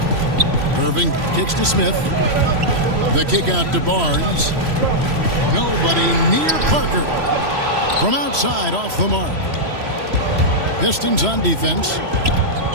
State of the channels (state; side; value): late; left; 3.0 ms